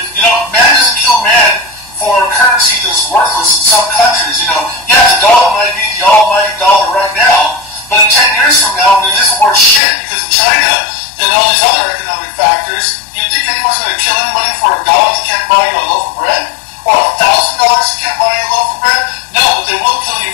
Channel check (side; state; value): right; drops out; at 9.8 s